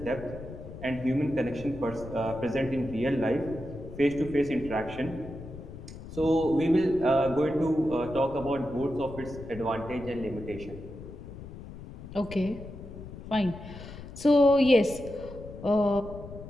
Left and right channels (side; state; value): left; noise; rumble, 13 dB below the sound